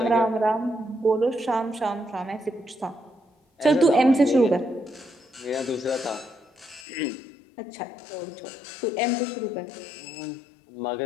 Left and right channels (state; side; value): drops out; right; at 6.9 s